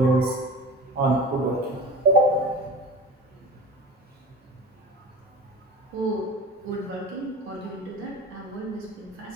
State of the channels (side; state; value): both; normal; correlation 0.35